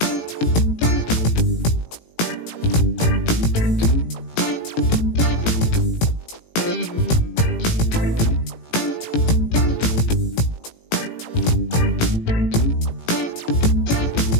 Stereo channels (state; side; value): late; right; 18 ms